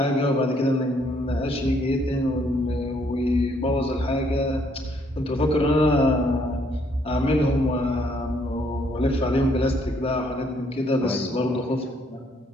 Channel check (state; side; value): normal; both; correlation 0.68